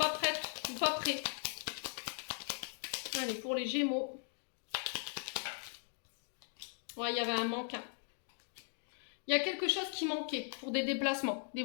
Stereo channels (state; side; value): silent; right; 52 dB below the other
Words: prête ou pas prêt. Allez, pour les Gémeaux. Ouais, il y avait un manque. Hein. Il y a quelque chose qui manquait pour des déplacements, des